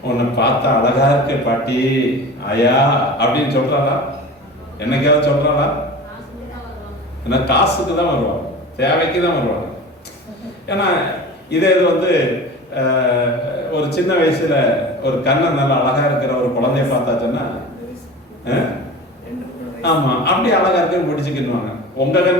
உன்னை பார்த்தா அழகா இருக்க பாட்டி ஆயா அப்படின்னு சொல்றாளா? என்னைக்காவது சொல்றாளா? ஏன்னா காசுக்கு தான் வருவாங்க, தேவைக்கு தான் வருவாங்க. ஏன்னா இதே இது ஒரு சின்ன வயசுல ஒரு கண்ணை நல்லா அழகா இருக்கிற ஒரு குழந்தைய பார்த்தாச்சுன்னா, ஆமா அப்படி அழகா இருக்க முடிச்சுக்கிடுவாங்க. உங்க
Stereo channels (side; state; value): both; normal; correlation 0.35